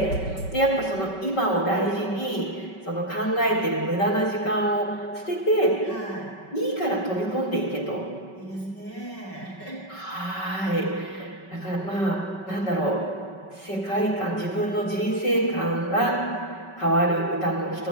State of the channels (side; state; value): right; late; 5.3 ms